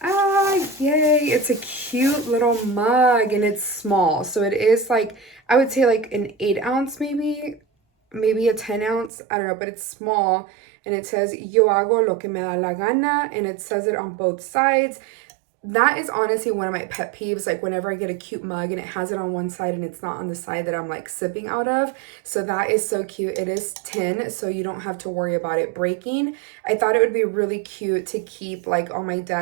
Ah, yay. It's a cute little mug and it's small. So it is like, I would say like an 8 ounce maybe a 10 ounce. I don't know, but it's small. And it says, Yo hago lo que me da la gana. And it says it on both sides. That is honestly one of my pet peeves, like whenever I get a cute mug and it has it on one side and it's not on the side that I'm like sipping out of. So that is so cute. It is tin, so you don't have to worry about it breaking. I thought it would be really cute to keep like on my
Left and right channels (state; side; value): drops out; left; at 9.1 s